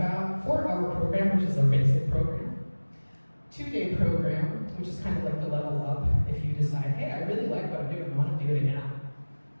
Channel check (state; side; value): inverted; both; correlation -1.00